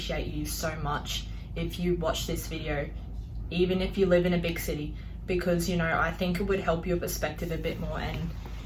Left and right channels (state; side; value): identical; both; correlation 1.00